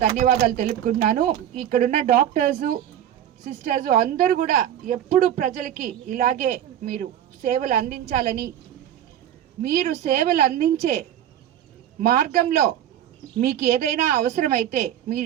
ధన్యవాదాలు తెలుపుకుంటున్నాను. ఇక్కడున్న డాక్టర్సు, సిస్టర్స్ అందరూ కూడా ఎప్పుడు ప్రజలకి ఇలాగే మీరు సేవలు అందించాలని, మీరు సేవలు అందించే మార్గంలో మీకు ఏదైనా అవసరమైతే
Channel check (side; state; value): left; quieter; 10.9 dB